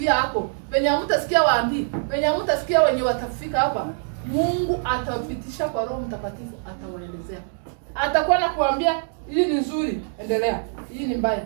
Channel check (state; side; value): silent; left; digital silence